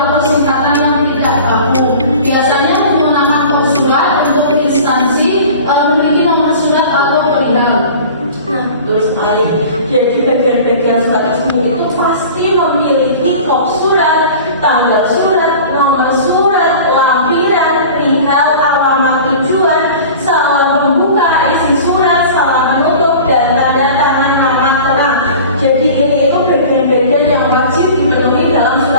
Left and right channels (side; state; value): both; inverted; correlation -0.40